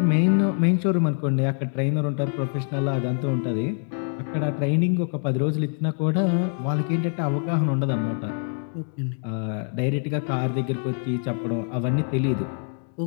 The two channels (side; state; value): right; silent; 55 dB below the other